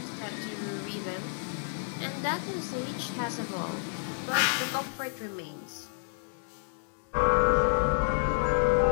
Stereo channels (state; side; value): silent; right; digital silence